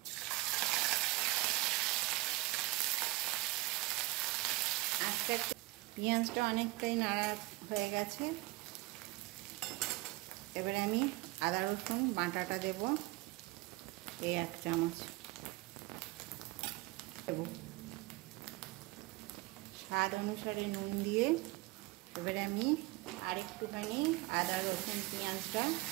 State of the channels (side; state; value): left; quieter; 21.0 dB